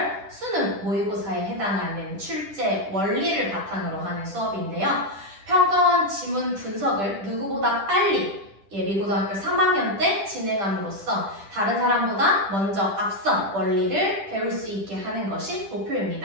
수능 모의고사에 해당하는 출제 원리를 바탕으로 하는 수업인데요. 평가원 지문 분석을 누구보다 빨리 예비고등학교 3학년 때 진행함으로써 다른 사람보다 먼저 앞선 원리를 배울 수 있게 하는 것이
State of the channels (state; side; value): late; left; 10 ms